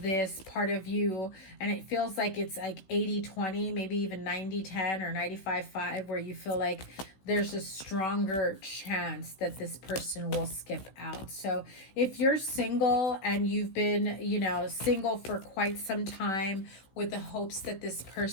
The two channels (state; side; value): late; right; 16 ms